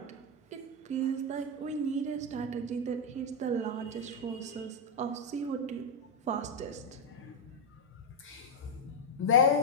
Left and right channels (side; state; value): both; normal; correlation 0.01